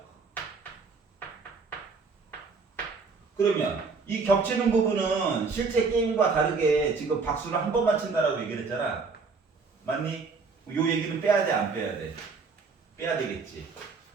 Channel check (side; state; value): left; quieter; 4.7 dB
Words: 그러면 이 겹치는 부분은 실제 게임과 다르게 지금 박수를 한 번만 친다라고 얘기를 했잖아. 맞니? 요 얘기는 빼야 돼, 안 빼야 돼? 빼야 되겠지.